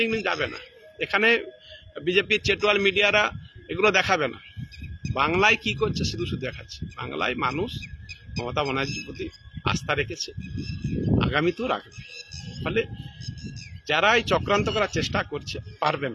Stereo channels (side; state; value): both; identical; correlation 1.00